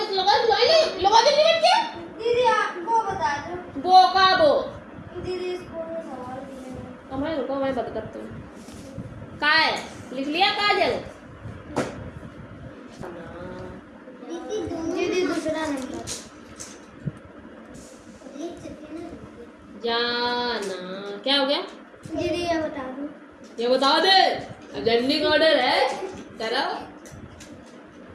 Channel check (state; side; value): identical; both; correlation 1.00